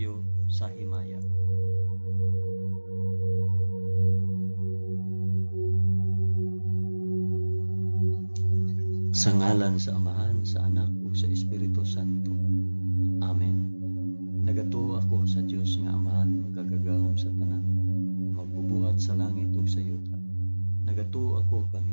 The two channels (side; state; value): both; inverted; correlation -1.00